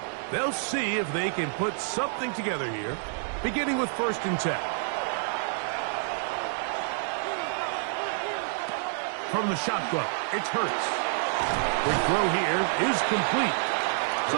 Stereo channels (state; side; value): silent; left; digital silence